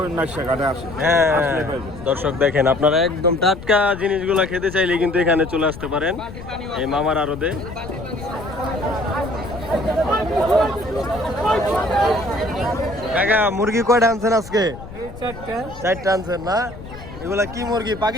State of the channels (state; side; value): noise; left; rumble, 14 dB below the sound